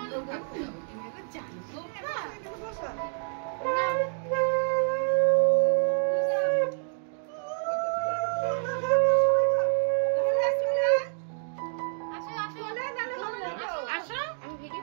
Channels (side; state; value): left; silent; 59 dB below the other